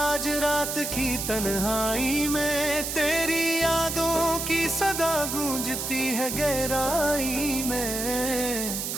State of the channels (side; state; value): right; noise; hiss, 3 dB below the sound